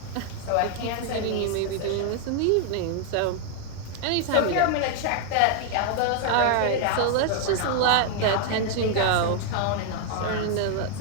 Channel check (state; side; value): different; both; correlation 0.00